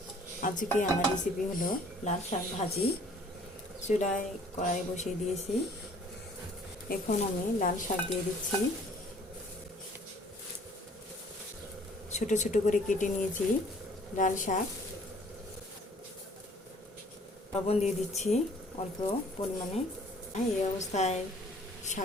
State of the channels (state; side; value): normal; both; correlation 0.56